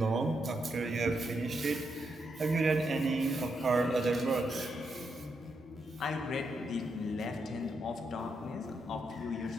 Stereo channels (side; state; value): both; normal; correlation 0.81